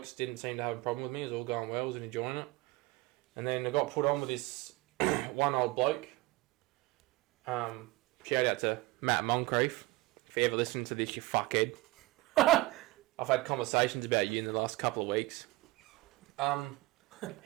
didn't seem to have a problem with me. It was all going well. I was enjoying it. And then I got put on with this one old bloke. Shout out to Matt Moncrief. If you ever listen to this, you fuckhead. I've had conversations about you in the last couple of weeks.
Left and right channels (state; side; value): quieter; left; 20.4 dB